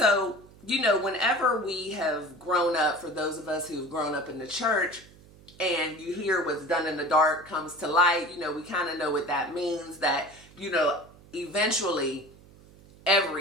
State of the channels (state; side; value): noise; right; hum, 23 dB below the sound